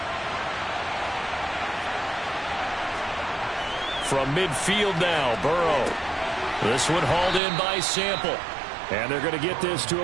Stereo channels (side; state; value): left; drops out; at 7.4 s